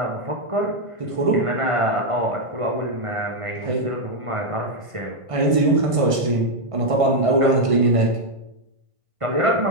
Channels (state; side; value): late; left; 1.5 ms